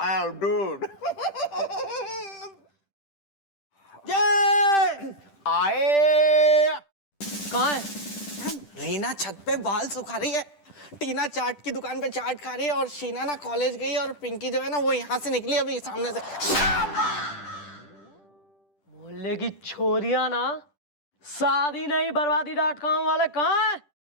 एम डूड। आए कहाँ है? रीना छत पे बाल सुखा रही है, टीना चाट की दुकान पे चाट खा रही है, और शीना ना कॉलेज गई, और पिंकी जो है ना वो यहाँ से निकली अभी सामने से। मोहल्ले की छोरियां ना शादी नहीं बर्बादी.com वाले कहाँ है?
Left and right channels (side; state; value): right; late; 10 ms